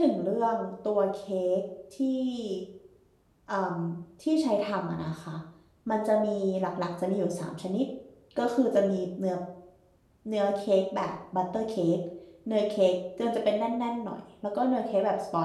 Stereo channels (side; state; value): both; identical; correlation 1.00